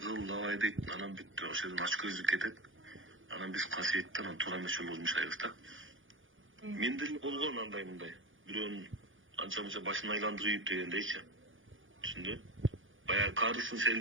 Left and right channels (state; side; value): late; left; 0.58 ms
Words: давай дейт. Анан бүттү, ошол жерден ачкөздүк кетет. Анан биз касиетти анан туура эмес жолго жумшайбыз да. Менде эле болгон андай мындай. Бирөөнүн анча-мынча башын айландырып дегендейчи. Түшүндү? Баягы карысын